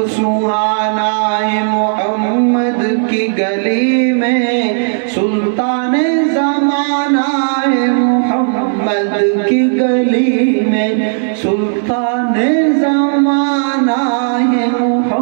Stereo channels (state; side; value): silent; left; digital silence